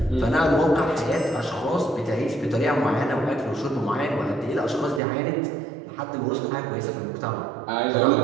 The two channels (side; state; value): left; drops out; at 5.0 s